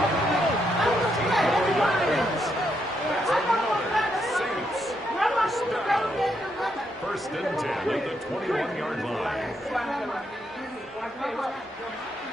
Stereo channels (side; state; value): both; normal; correlation 0.78